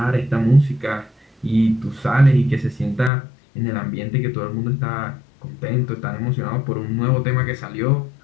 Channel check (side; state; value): right; drops out; at 3.1 s